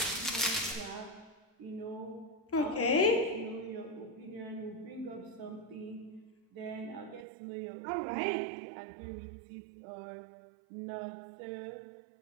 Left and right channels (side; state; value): left; drops out; at 7.2 s